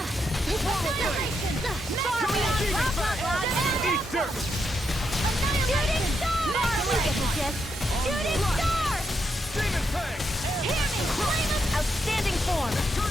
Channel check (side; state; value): both; normal; correlation 0.81